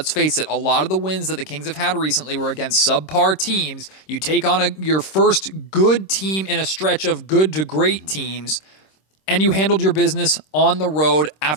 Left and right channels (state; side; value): late; right; 26 ms